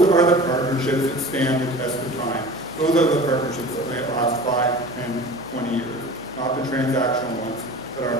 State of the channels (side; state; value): left; noise; hum, 27 dB below the sound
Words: are the partnerships that stand the test of time. Those are the partnerships that may last 5, 10, 20 years. Not the transactional ones that are